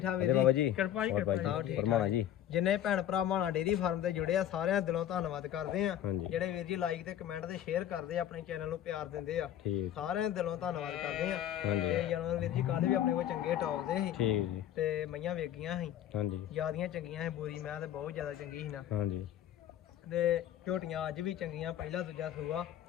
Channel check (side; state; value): right; quieter; 11.2 dB